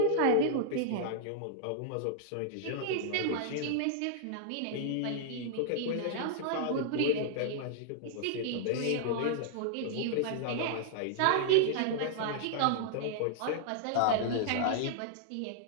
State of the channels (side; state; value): both; different; correlation -0.01